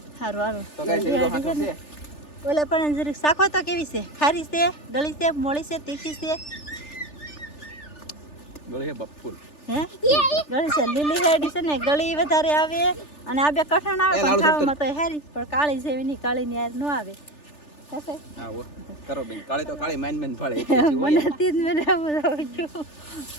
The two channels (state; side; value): late; right; 3.4 ms